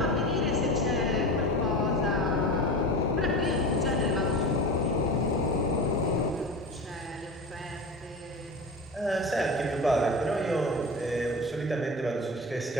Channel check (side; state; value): both; normal; correlation 0.30